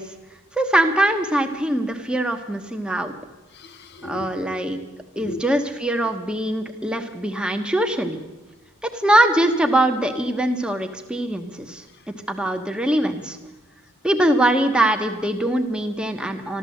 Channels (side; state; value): both; normal; correlation 0.77